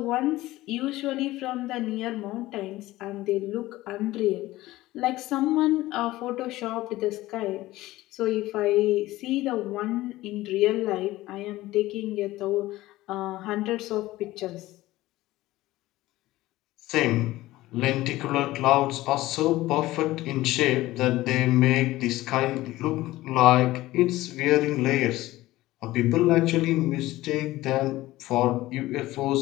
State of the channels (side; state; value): right; quieter; 17.2 dB